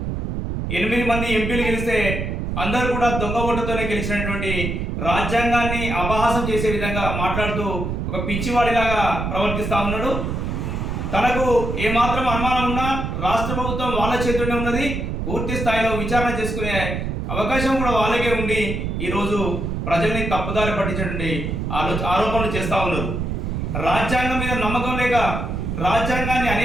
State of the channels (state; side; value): noise; right; rumble, 3 dB below the sound